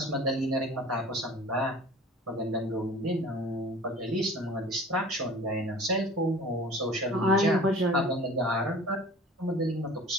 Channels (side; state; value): both; normal; correlation 0.43